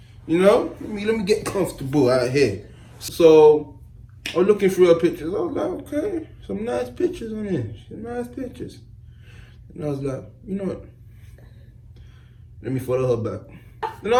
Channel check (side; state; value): both; identical; correlation 1.00